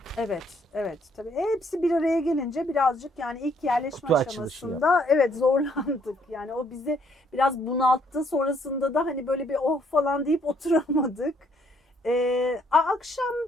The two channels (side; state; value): both; normal; correlation 0.67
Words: Evet, evet. Tabii hepsi bir araya gelince birazcık yani ilk yerleşme Kutu açılışı aşamasında evet zorlandık. Yani o bizi biraz bunalttı. Sonrasında da hani böyle bir oh falan deyip oturamadık. Akşam